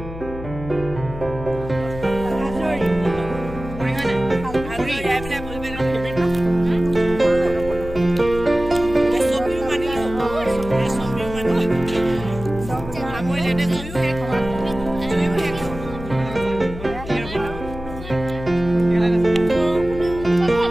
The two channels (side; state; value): left; noise; hum, 11 dB below the sound